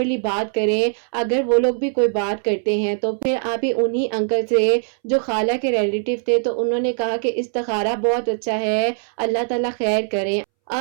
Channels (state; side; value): silent; left; 64 dB below the other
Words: بات کریں، اگر وہ لوگ بھی کوئی بات کرتے ہیں تو پھر آپ ہی انہی انکل سے جو خالہ کے ریلیٹیو تھے تو انہوں نے کہا کہ استخارہ بہت اچھا ہے، اللہ تعالیٰ خیر کریں۔